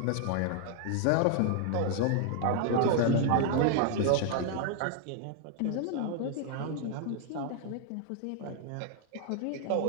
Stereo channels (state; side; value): different; both; correlation 0.00